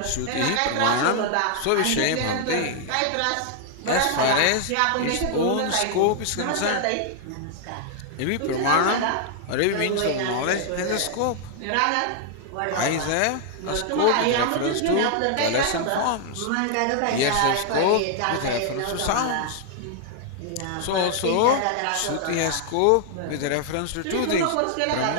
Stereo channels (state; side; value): different; both; correlation 0.00